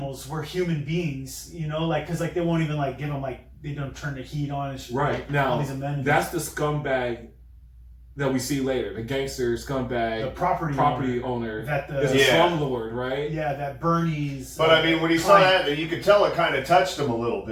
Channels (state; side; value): identical; both; correlation 1.00